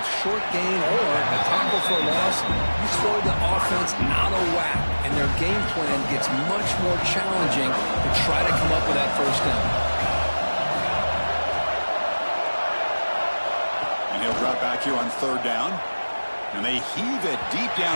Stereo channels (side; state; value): both; inverted; correlation -1.00